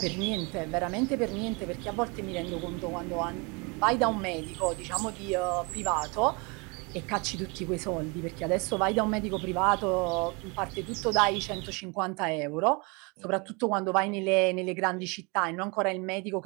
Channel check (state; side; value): quieter; left; 30.0 dB